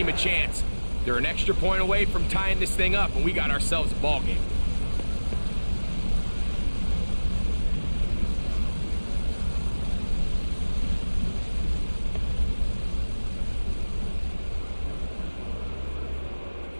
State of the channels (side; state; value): both; inverted; correlation -1.00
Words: a chance? They're an extra point away from tying this thing up, and we got ourselves a ball game.